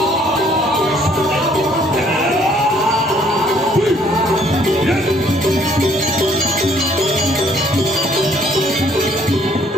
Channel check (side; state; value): both; normal; correlation 0.63